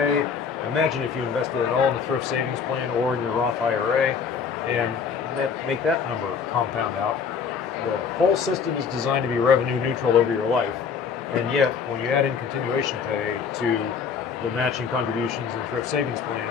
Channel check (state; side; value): quieter; right; 6.2 dB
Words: Imagine if you invested it all in the thrift savings plan or in your Roth IRA and make that number compound out. The whole system is designed to be revenue neutral over your life, and yet when you add in continuation pay to the matching contributions in the thrift savings plan,